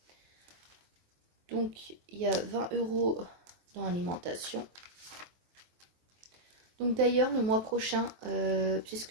Donc, il y a 20 euros dans l'alimentation. Donc d'ailleurs, le mois prochain, puisque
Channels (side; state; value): left; late; 23 ms